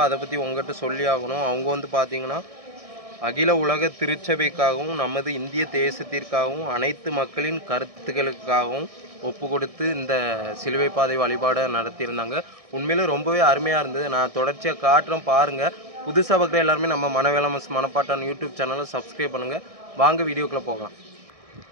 அதை பற்றி உங்கள்கிட்ட சொல்லி ஆகணும். அவங்க வந்து பார்த்திங்கன்னா அகில உலக திருச்சபைக்காகவும் நமது இந்திய தேசத்திற்காகவும் அனைத்து மக்களின் கருத்துக்களுக்காகவும் ஒப்பு கொடுத்து இந்த சிலுவை பாதை வழிபாடை நடத்தியிருந்தாங்க. உண்மையிலே ரொம்பவே அருமையாக இருந்தது. நான் தொடர்ச்சியாக காட்டுறேன் பாருங்கள். புதுசாக பார்க்குற எல்லாருமே நம்ம மனவேலமஸ் மணப்பாட்டான் யூடியூப் சேனலை சப்ஸ்கிரைப் பண்ணுங்கள். வாங்க வீடியோக்குள்ளே போகலாம்.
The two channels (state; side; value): late; left; 1.6 ms